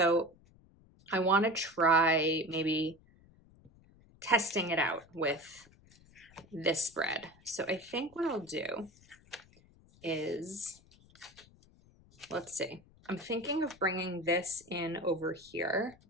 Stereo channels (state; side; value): noise; left; rumble, 27 dB below the sound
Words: I want to try maybe testing it out with this spread. So I think what I'll do is, let's see, I'm thinking of bringing this in over here,